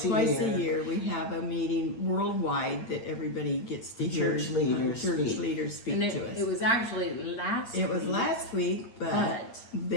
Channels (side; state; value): right; late; 8.7 ms